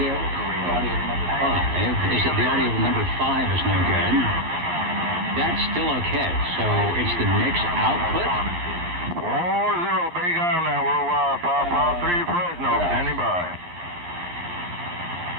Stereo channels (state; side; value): late; left; 11 ms